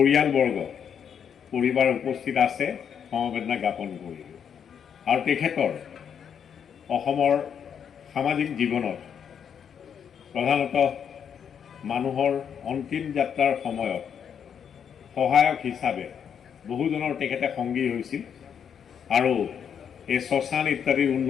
পৰিবাৰ উপস্থিত আছে সমবেদনা জ্ঞাপন কৰিলোঁ। আৰু তেখেতৰ অসমৰ সামাজিক জীৱনত প্ৰধানতঃ মানুহৰ অন্তিম যাত্ৰাৰ সময়ত সহায়ক হিচাপে বহুজনৰ তেখেতে সংগী হৈছিল আৰু এই শ্মশান ইত্যাদি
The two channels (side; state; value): right; quieter; 7.9 dB